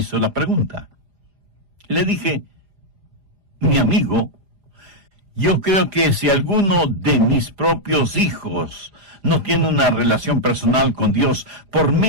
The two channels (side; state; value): left; late; 4.9 ms